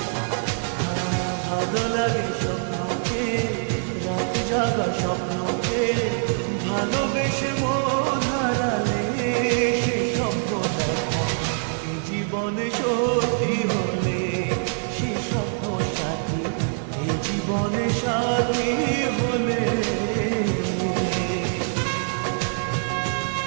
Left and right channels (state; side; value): silent; left; 57 dB below the other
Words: ভালো লাগে স্বপ্নকে রাত জাগা স্বপ্নকে ভালোবেসে মন হারালে সে স্বপ্ন দেখা এই জীবনে সত্যি হলে সে স্বপ্ন সাথী এই জীবনে সাথী হলে